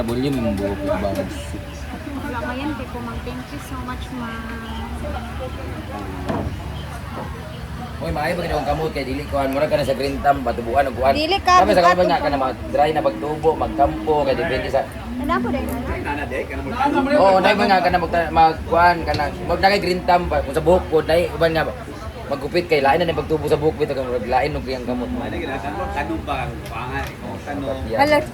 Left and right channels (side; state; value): both; identical; correlation 1.00